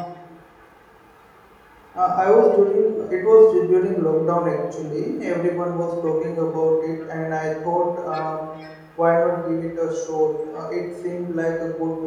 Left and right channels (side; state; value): both; identical; correlation 1.00